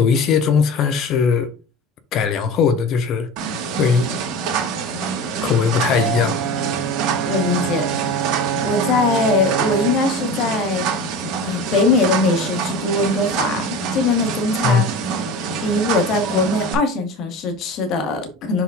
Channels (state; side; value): normal; both; correlation 0.32